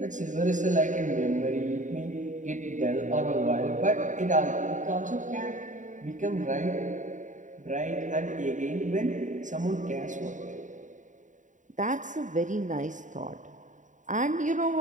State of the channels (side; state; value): left; late; 0.36 ms